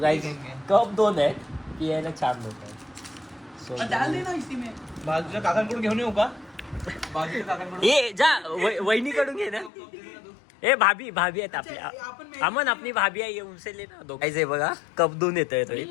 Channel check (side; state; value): right; drops out; at 9.7 s